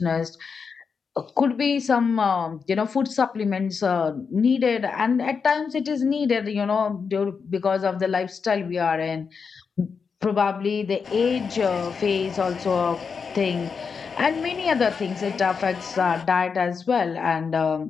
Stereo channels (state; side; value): quieter; right; 5.7 dB